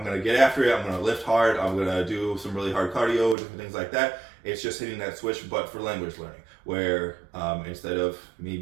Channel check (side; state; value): left; drops out; at 3.4 s